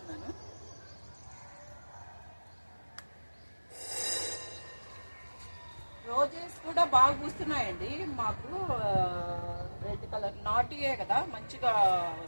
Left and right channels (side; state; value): both; inverted; correlation -1.00